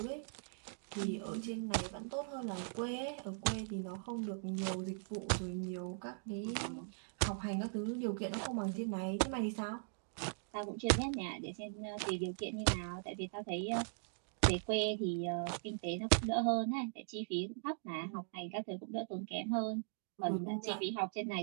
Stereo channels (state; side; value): silent; left; digital silence